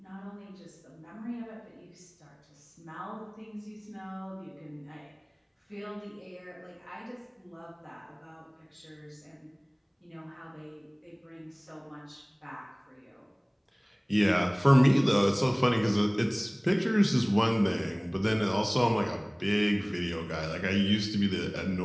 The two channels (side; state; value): both; identical; correlation 1.00